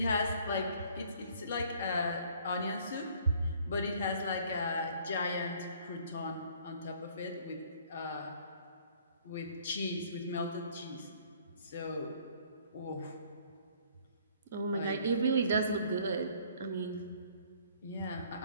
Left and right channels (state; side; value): inverted; both; correlation -0.58